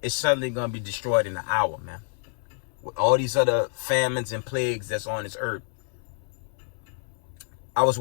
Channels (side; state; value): right; silent; 57 dB below the other